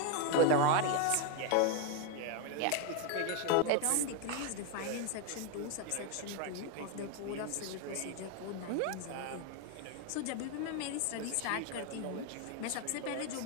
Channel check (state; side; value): different; both; correlation 0.01